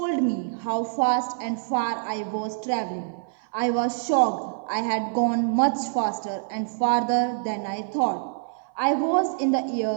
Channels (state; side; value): silent; left; 55 dB below the other